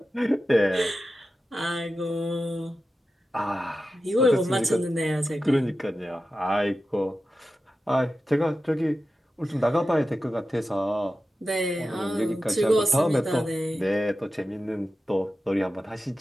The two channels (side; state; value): both; normal; correlation 0.92